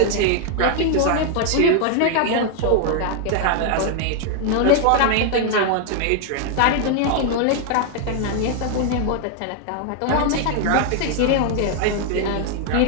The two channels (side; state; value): both; different; correlation 0.00